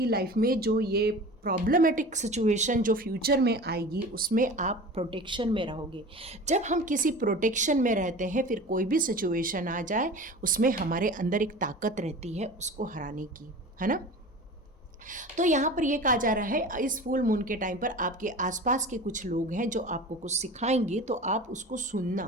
लाइफ में जो ये प्रॉब्लमेटिक सिचुएशन जो फ्यूचर में आएगी, उसमें आप प्रोटेक्शन में रहोगे। जब हम किसी प्रोटेक्शन में रहते हैं, फिर कोई भी सिचुएशन आ जाए उसमें हमारे अंदर एक ताकत रहती है उसको हराने की, है ना? तो यहाँ पर ये कहा जा रहा है इस फुल मून के टाइम पर आपके आसपास के कुछ लोग हैं जो आपको कुछ सिखाएंगे, तो आप उसको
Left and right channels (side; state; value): both; normal; correlation 0.36